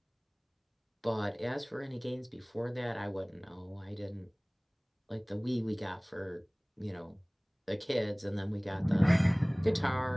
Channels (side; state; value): both; identical; correlation 1.00